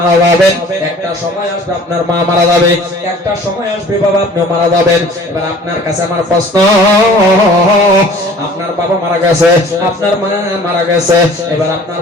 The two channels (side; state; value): both; normal; correlation 0.49